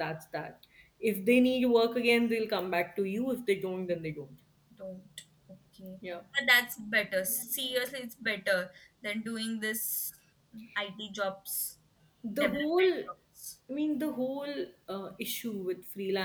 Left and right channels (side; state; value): both; identical; correlation 1.00